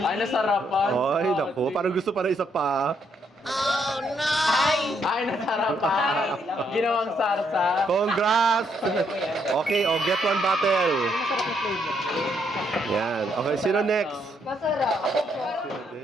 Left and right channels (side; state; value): both; normal; correlation 0.74